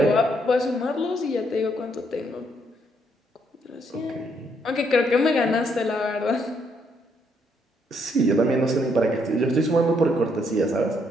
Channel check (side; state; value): both; normal; correlation 0.72